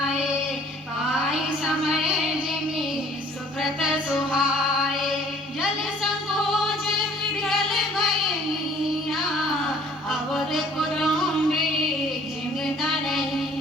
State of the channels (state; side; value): normal; both; correlation 0.55